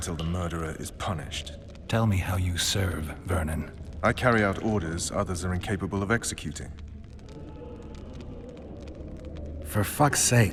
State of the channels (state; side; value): identical; both; correlation 1.00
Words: the murderer is punished. Tell me how you serve, Vernon. I carry out orders others are incapable of executing. For fuck's